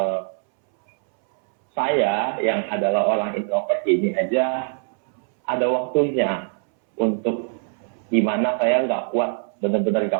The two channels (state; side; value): silent; left; 64 dB below the other